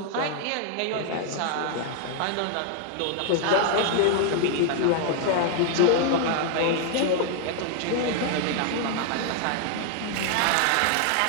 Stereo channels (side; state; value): both; different; correlation 0.00